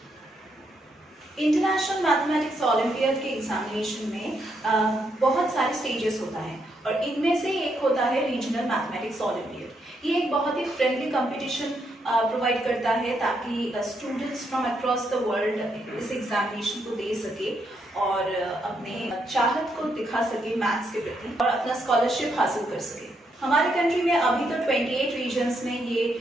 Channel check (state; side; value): normal; both; correlation 0.77